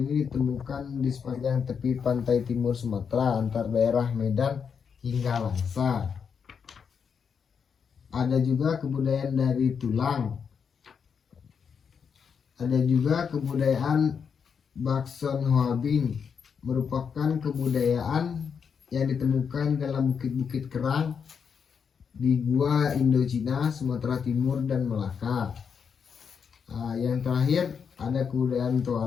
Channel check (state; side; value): quieter; right; 6.6 dB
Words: ditemukan di sepanjang tepi pantai timur Sumatera antar daerah Medan hingga Langsa. Ada juga kebudayaan dari tulang. Ada juga kebudayaan Bakson Hoabing, merupakan kebudayaan yang ditemukan dalam bukit-bukit kerang di gua Indochina, Sumatera Timur, dan Melaka. Yang terakhir ada kebudayaan